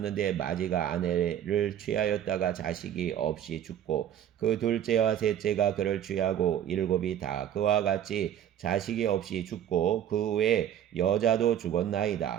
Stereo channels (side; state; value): left; quieter; 10.4 dB